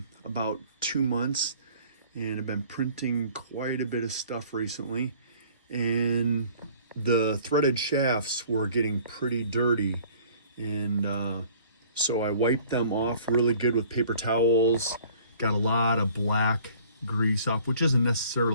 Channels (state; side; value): inverted; both; correlation -0.53